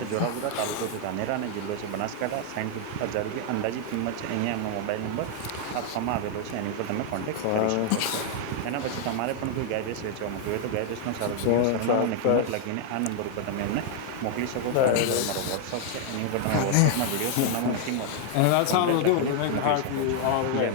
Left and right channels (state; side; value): different; both; correlation 0.00